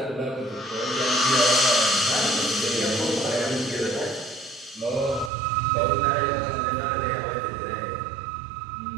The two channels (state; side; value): drops out; left; at 5.3 s